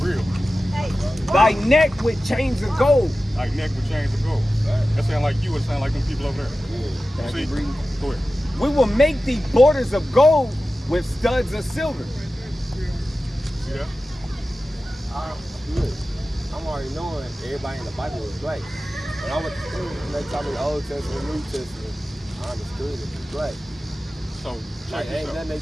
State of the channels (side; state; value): both; normal; correlation 0.95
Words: Real. Thy neck with chains of gold. Like neck with chains of gold. That sound like you. It sound like them people over there. Can I See? keep reading? Go ahead. We will make thee borders of gold with studs of silver. See that? Look, I'm already knowing everybody in the Bible was black. When I went to school, and they taught me the Old Testament, New Testament, I understood it was black. So Like, check ain't this out. nothing they